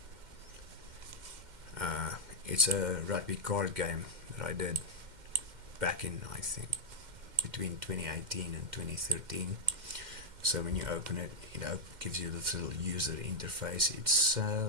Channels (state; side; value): late; left; 2.1 ms